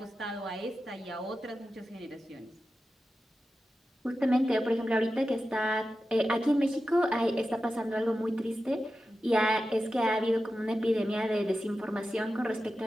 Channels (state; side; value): normal; both; correlation 0.92